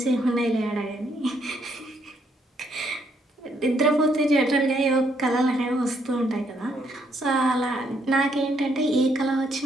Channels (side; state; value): both; normal; correlation 0.72